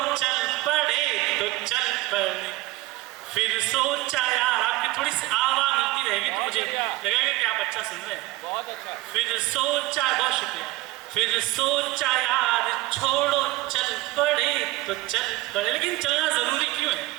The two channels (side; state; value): left; quieter; 18.9 dB